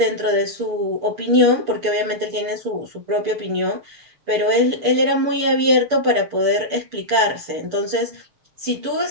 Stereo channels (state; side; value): late; left; 6.8 ms